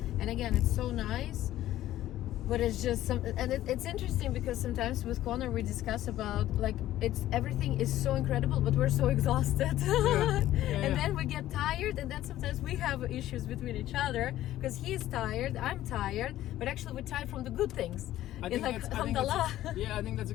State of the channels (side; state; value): right; quieter; 13.9 dB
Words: And again, it's so nice, but it's just it's interesting because sometimes with Connor we discuss about like everything is so incredible, but we're so exhausted. And then we get tired, and then sometimes we have issues between each other because he's tired, I'm tired, but actually we're tired from the good things. I think that's a